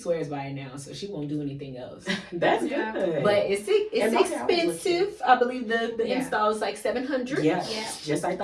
by it now, so she won't do anything else. That's good. But it's expensive. I believe the install is like $700. Yeah. Just like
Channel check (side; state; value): both; identical; correlation 1.00